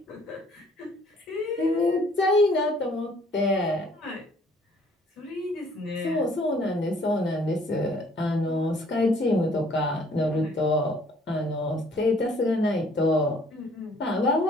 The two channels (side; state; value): both; normal; correlation 0.59